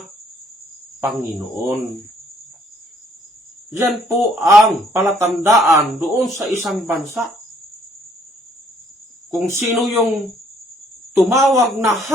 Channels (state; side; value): normal; both; correlation 0.64